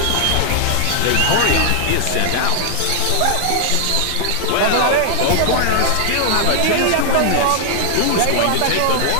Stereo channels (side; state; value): both; different; correlation 0.00